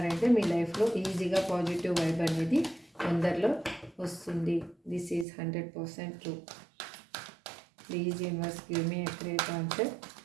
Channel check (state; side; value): drops out; left; at 5.2 s